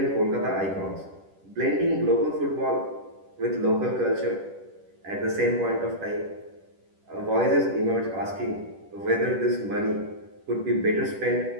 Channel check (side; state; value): left; late; 10 ms